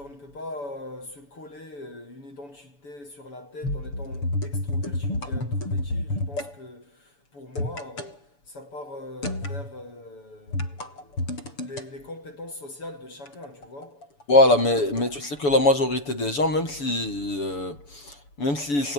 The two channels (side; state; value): right; late; 7.0 ms